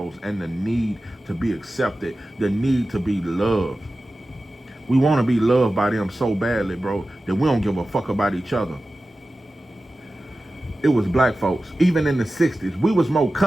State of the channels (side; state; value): both; normal; correlation 0.95